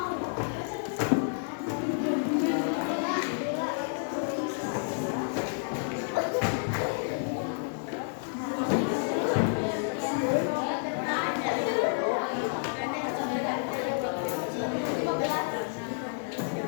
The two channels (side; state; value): right; silent; 58 dB below the other